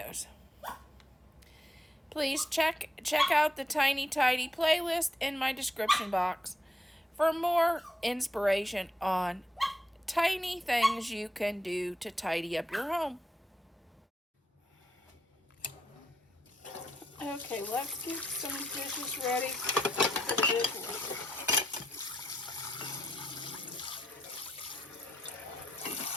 Please check out the Tiny Tidy playlist in my description box for more inspiration on tiny things you can do to tidy up your home. Okay, let's get some dishes ready for the dishwasher.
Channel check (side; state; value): both; normal; correlation 0.80